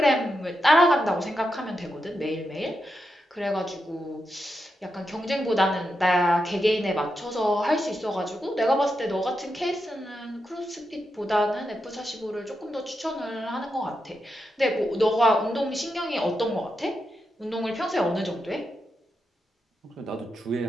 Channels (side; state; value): both; normal; correlation 0.86